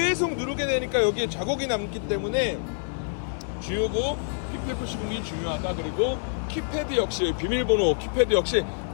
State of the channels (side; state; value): right; silent; 60 dB below the other